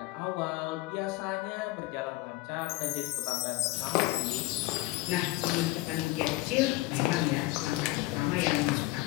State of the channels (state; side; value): quieter; right; 19.0 dB